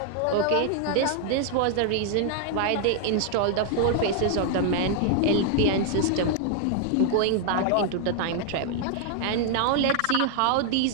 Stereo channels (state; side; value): different; both; correlation 0.00